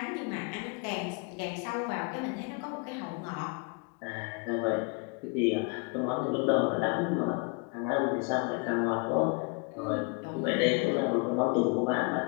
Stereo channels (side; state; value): right; quieter; 34.0 dB